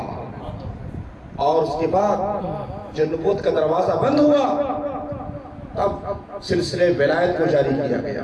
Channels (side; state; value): both; identical; correlation 1.00